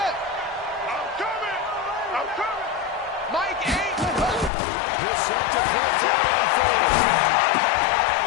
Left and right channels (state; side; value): drops out; right; at 4.5 s